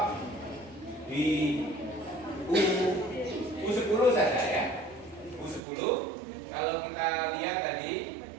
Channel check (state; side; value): drops out; left; at 5.6 s